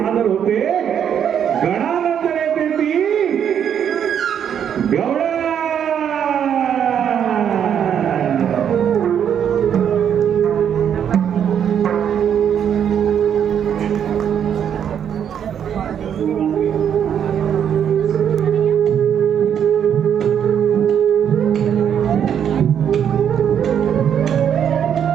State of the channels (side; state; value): left; quieter; 8.7 dB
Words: होते. गणानंतर येते ती गवळण.